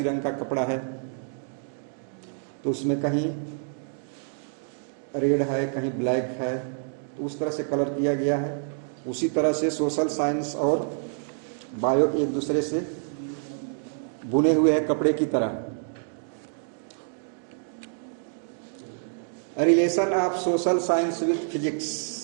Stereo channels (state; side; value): silent; left; digital silence